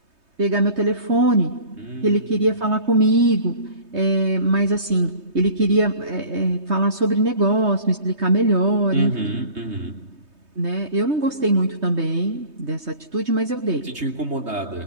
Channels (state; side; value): late; left; 3.2 ms